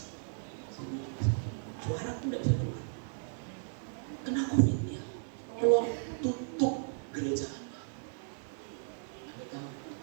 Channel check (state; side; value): silent; left; digital silence